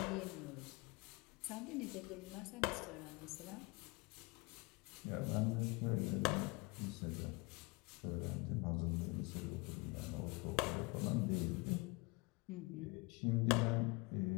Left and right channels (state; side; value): quieter; right; 25.9 dB